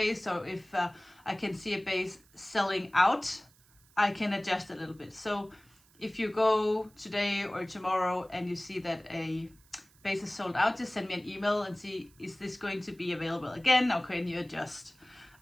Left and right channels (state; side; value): noise; right; hiss, 29 dB below the sound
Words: So if I can see a base selling out, I can adjust a little bit. So if you go today or tomorrow and you see that a base is sold out, just send me an email and see, is this going to be available again, or can you adjust?